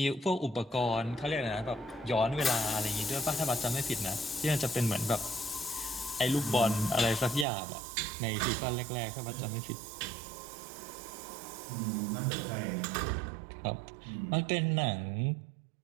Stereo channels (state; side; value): drops out; left; at 7.5 s